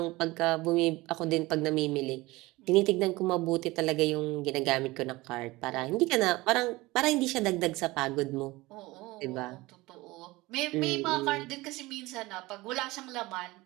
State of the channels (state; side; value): quieter; left; 20.6 dB